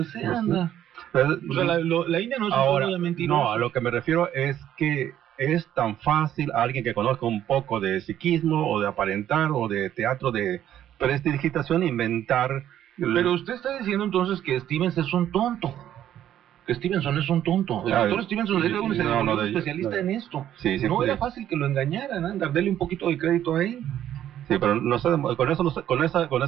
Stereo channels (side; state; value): left; quieter; 11.2 dB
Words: sea, anda. Entonces, o sea, la India no es ahora, un de mentiroso. No, a lo que me refiero es que es tan fácil a alguien que conozca un poco de psiquismo o de aparentar o de teatro de prestidigitación inventar. Pero usted está diciendo entonces que Stevenson es un tonto. Que Stevenson es un tonto. El doctor Stevenson era un especialista en esto. Sí, no era fácil que lo engañaran, anda, dele un poquito de crédito a él. Sí, pero no sé, con